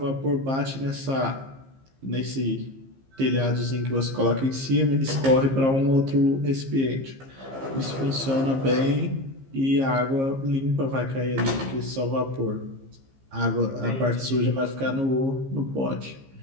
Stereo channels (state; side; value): late; left; 15 ms